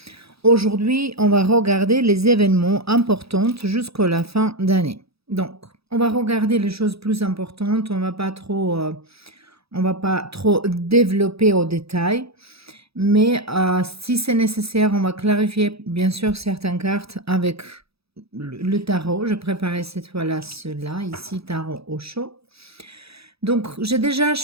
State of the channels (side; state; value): left; late; 0.77 ms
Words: Aujourd'hui, on va regarder les événements importants jusqu'à la fin d'année. Donc, on va regarder les choses plus importantes, on va pas trop développer au détail, mais si c'est nécessaire, on va clarifier bien sûr certaines cartes avec le tarot. Je préparais cette fois-là cela, ici, tarot au chaud. Donc, j'ai déjà